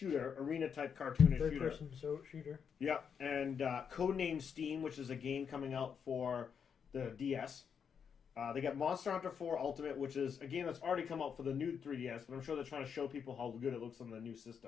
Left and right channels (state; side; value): quieter; right; 7.0 dB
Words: arena-type cartoonish shooter. Third-person shooter. Yep, and Codename Steam, which is a game coming out for the DS. They got Monster Hunter 4 Ultimate, which is a game that's already come out for the new 3DS, but I'm sure they're trying to show people how good it looks on the new